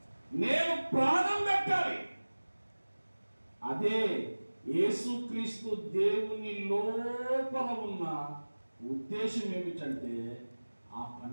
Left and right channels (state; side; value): inverted; both; correlation -1.00